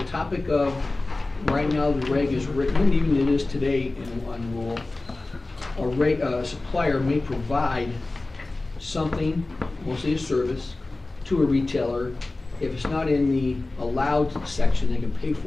topic of, right now the reg is written, and even it is today on rule, a supplier may provide something, mostly a service, to a retailer. If it's not in the allowed section, they can pay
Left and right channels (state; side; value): quieter; right; 3.1 dB